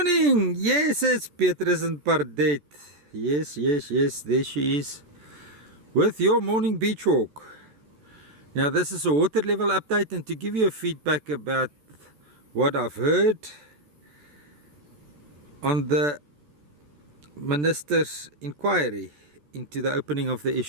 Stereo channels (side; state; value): left; late; 14 ms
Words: Yes, it's Petrus and Pardet. Yes, there she is with your morning beach walk. Now this is a water level update, and to give you a feedback about what I've heard on the Minister's inquiry into the opening of the